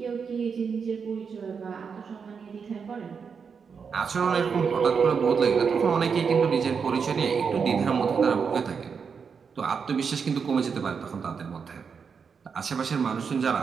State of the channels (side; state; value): left; quieter; 6.0 dB